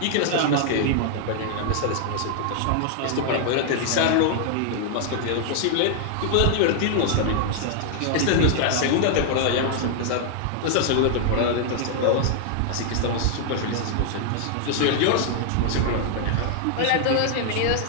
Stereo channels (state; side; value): different; both; correlation 0.00